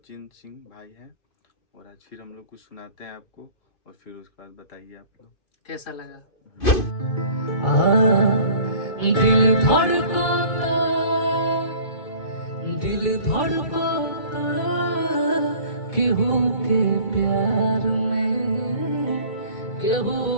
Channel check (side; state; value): right; late; 2.6 ms